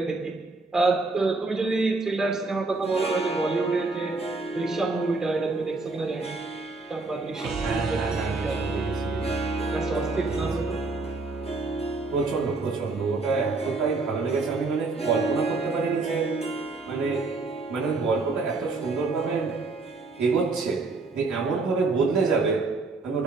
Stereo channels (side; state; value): left; quieter; 3.6 dB